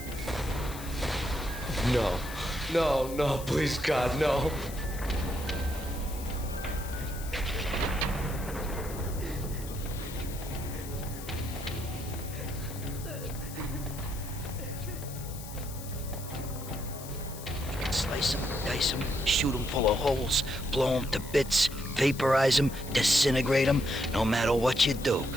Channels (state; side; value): noise; left; hiss, 13 dB below the sound